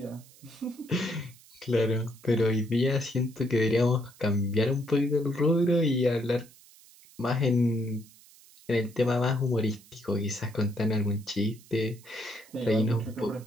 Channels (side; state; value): right; noise; hiss, 24 dB below the sound